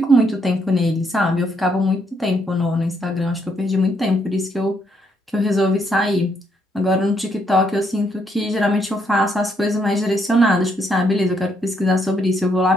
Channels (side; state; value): both; normal; correlation 0.74